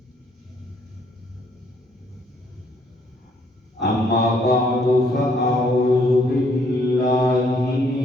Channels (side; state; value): both; normal; correlation 0.67